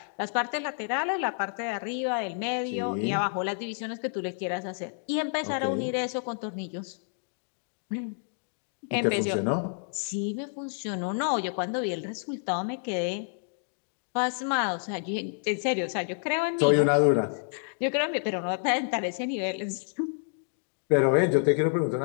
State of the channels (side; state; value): right; silent; digital silence